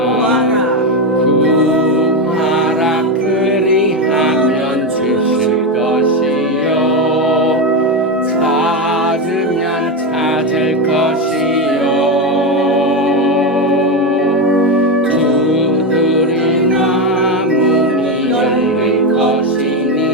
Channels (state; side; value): normal; both; correlation 0.12